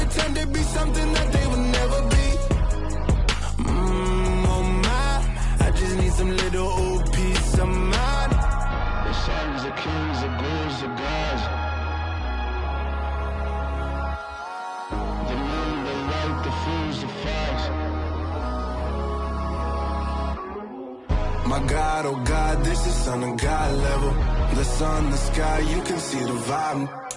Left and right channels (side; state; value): both; identical; correlation 1.00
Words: to be something that they will never be. Oh my, I just need some little old peace of mind. The sons, the kings, the ghouls, the gods. The moon, the light, the fools, the facts. My God, oh God, this is Son of God level. The sun, the sky, you can see the vibe.